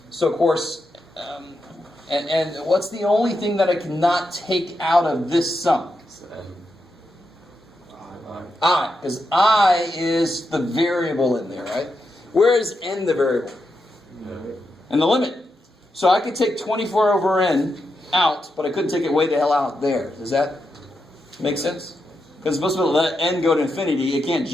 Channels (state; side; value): normal; both; correlation 0.85